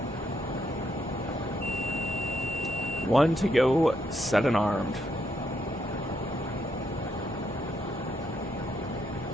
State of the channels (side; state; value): both; normal; correlation 0.76